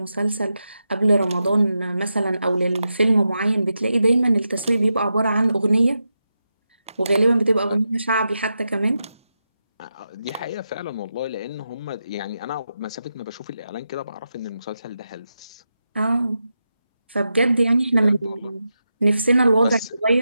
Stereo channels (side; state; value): both; inverted; correlation -0.88